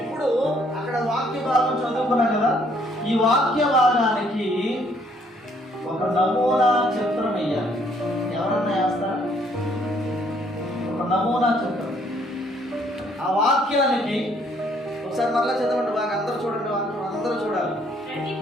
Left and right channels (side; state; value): both; normal; correlation 0.66